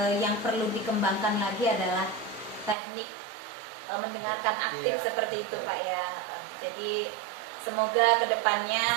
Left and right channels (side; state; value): left; drops out; at 2.8 s